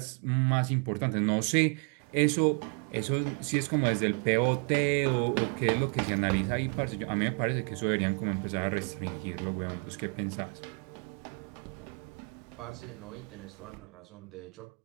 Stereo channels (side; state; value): left; quieter; 36.1 dB